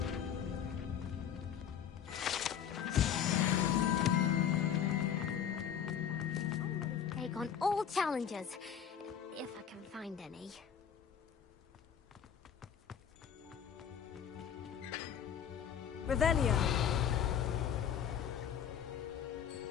Take on all challenges, if I can find any. Revelio.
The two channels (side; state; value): right; quieter; 8.6 dB